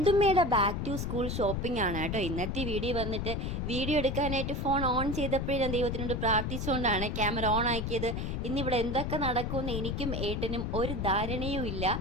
ബാക്ക് ടു സ്കൂൾ ഷോപ്പിംഗ് ആണ് കേട്ടോ ഇന്നത്തെ വീഡിയോ. വന്നിട്ട് വീഡിയോ എടുക്കാനായിട്ട് ഫോൺ ഓൺ ചെയ്തപ്പോഴേ ഞാൻ ദൈവത്തിനോട് പ്രാർത്ഥിച്ചുകൊണ്ടാണ് ക്യാമറ ഓൺ ആക്കിയത്. ഇന്നിവിടെ എന്തൊക്കെ നടക്കുമെന്ന് എനിക്കും ഏട്ടനും ഒരു ധാരണയും ഇല്ല.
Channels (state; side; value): noise; left; rumble, 2 dB below the sound